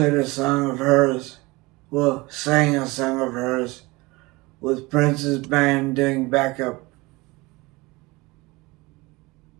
a song of hers. Well, sang a song of hers with Prince's band doing backup.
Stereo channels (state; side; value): quieter; left; 23.0 dB